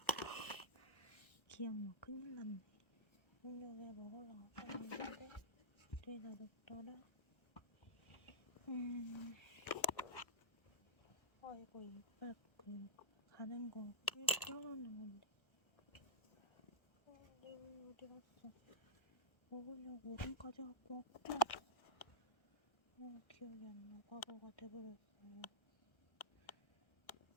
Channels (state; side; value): late; right; 1.3 ms